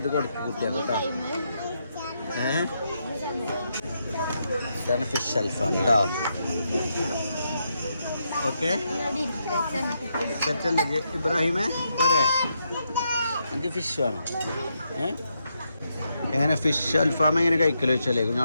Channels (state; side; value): inverted; both; correlation -0.81